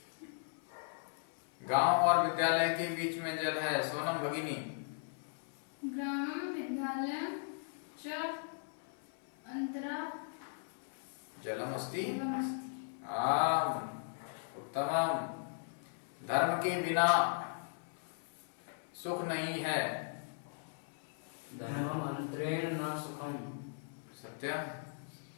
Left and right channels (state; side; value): silent; right; 53 dB below the other